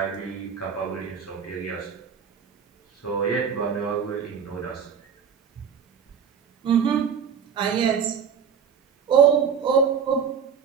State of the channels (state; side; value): quieter; left; 7.0 dB